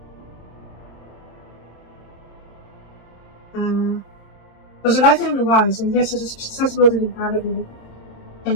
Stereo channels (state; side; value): late; right; 26 ms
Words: Was a life in the wise, and yes, it is accessible to be part of it.